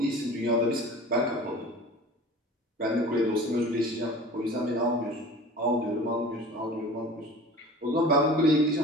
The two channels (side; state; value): both; normal; correlation 0.41